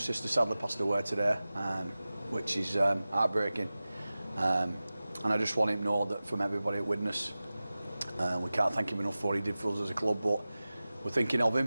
sadly passed away today, which is heartbreaking. And I just want him to know that from everybody at Widnes, we can't thank him enough for what he did for us as a club, but we're thinking of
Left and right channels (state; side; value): inverted; both; correlation -0.96